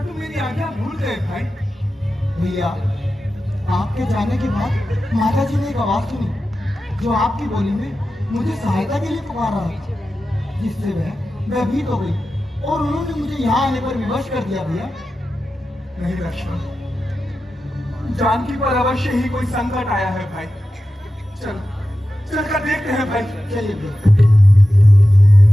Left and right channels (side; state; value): both; normal; correlation 0.93